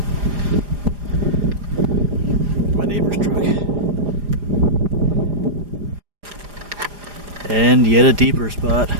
My neighbor's truck. And yet a deeper spot.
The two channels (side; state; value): left; late; 4.9 ms